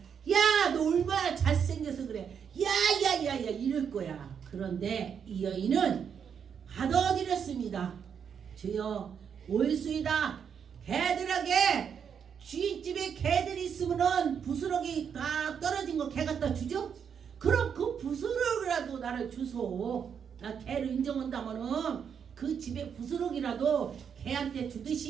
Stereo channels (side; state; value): left; quieter; 7.4 dB